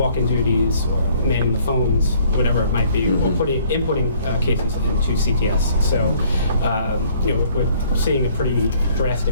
duties or manning the phones, whatever it might be, or inputting cases into CTS. So, we're seeing a pretty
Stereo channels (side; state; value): both; inverted; correlation -0.60